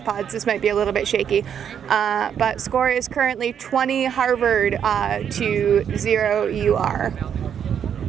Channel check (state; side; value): quieter; left; 8.4 dB